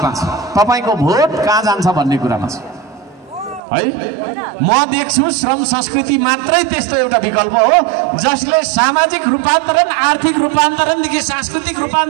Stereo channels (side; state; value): left; drops out; at 3.6 s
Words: छ, तपाईँको भोट कहाँ जान्छ भन्ने कुरामा छ है। म देख्छु श्रम संस्कृति मात्रै त्यस्तो एउटा विकल्प हो जसले सामाजिक रूपान्तरण, आर्थिक रूपान्तरणदेखि सांस्कृतिक